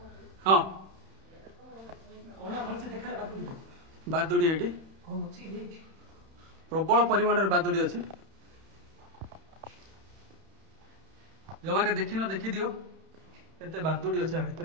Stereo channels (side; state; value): left; late; 31 ms